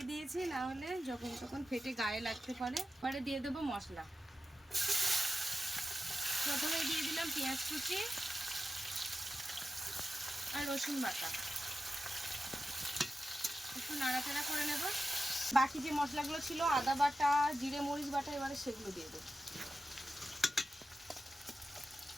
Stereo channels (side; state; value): both; normal; correlation 0.92